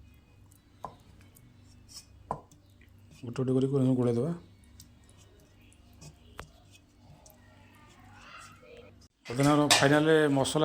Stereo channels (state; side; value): identical; both; correlation 1.00